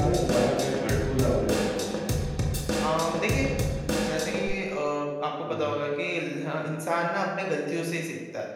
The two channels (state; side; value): identical; both; correlation 1.00